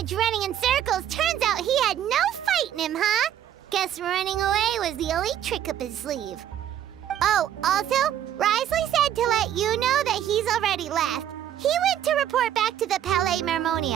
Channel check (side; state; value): left; quieter; 10.7 dB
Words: running in circles, turns out he had no fight in him, huh? Guess running away was the only trick up his sleeve. Oh, also, Risley said to let you know that he's already left. He went to report back to the Palais